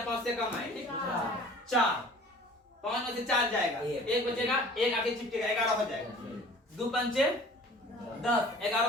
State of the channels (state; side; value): normal; both; correlation 0.46